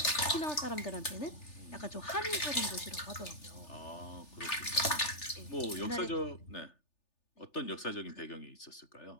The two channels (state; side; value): late; right; 3.4 ms